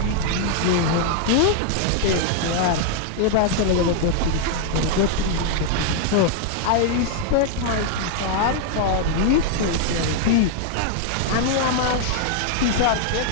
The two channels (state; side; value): different; both; correlation 0.00